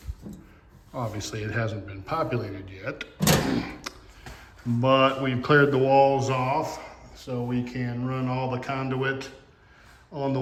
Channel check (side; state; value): both; identical; correlation 1.00